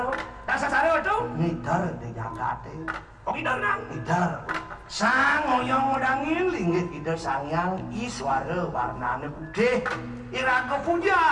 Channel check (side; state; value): both; identical; correlation 1.00